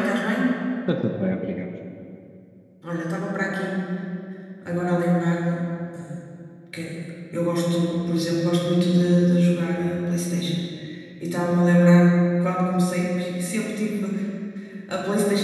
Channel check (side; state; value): both; identical; correlation 1.00